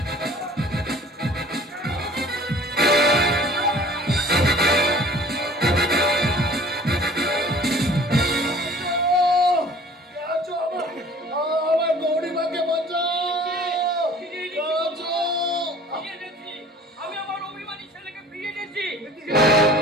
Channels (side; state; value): both; normal; correlation 0.49